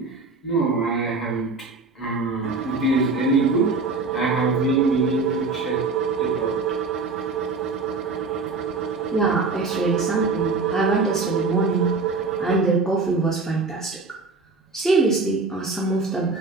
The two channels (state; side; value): quieter; left; 4.0 dB